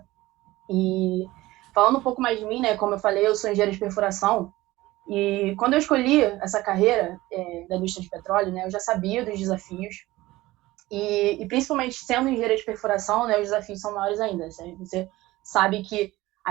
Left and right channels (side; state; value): left; quieter; 18.2 dB